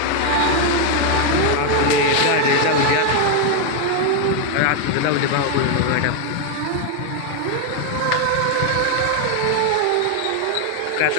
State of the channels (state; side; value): different; both; correlation 0.01